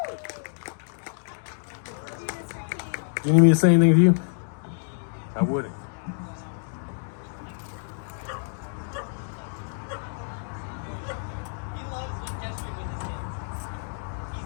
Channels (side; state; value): right; silent; digital silence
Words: Do you need me to say anything to you? I wouldn't.